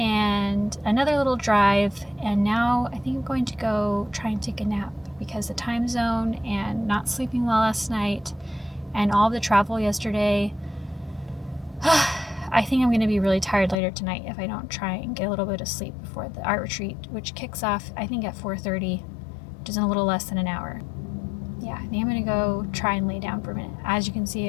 another little drive, and now I think I'm going to go try and take a nap, because the time zone and not sleeping well last night and all the travel yesterday, I think I'm going to be really tired later tonight if I don't try and get a little bit of sleep before the art retreat, which kicks off I think at 4:30, which is in a little less than an hour. Yeah, I think I'm going to go try and lay down for a minute. As you can see,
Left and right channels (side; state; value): right; drops out; at 13.8 s